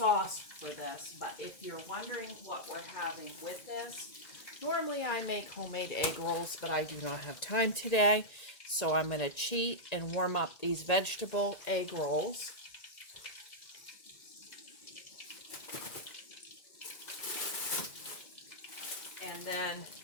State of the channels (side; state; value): right; late; 1.9 ms